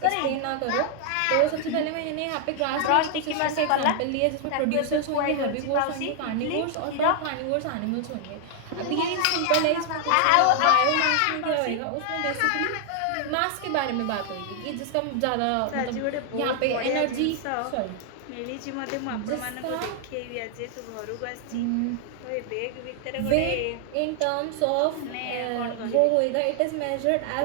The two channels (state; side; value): different; both; correlation 0.00